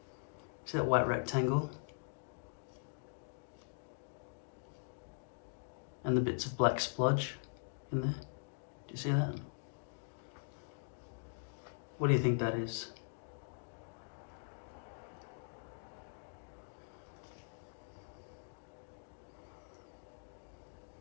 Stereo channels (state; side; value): silent; right; digital silence